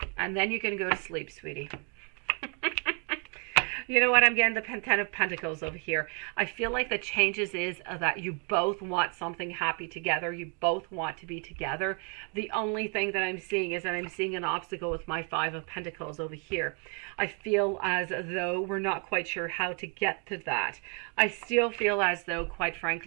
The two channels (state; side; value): quieter; left; 37.3 dB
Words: And then you can go to sleep, sweetie. You know what? I'm getting the Ten of Pentacles over here. I feel like the changes is that you both want something happy together. You both want to be together. The only thing that I'm seeing is that I'm seeing an obstacle with my Five of Pentacles over here. I feel as though we're not quite sure how to get to that. I still feel as though, quite